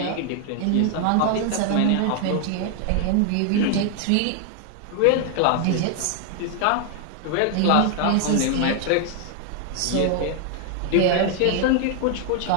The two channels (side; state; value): both; different; correlation 0.00